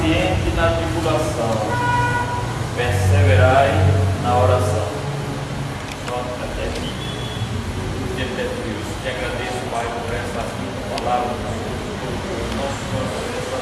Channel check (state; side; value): identical; both; correlation 1.00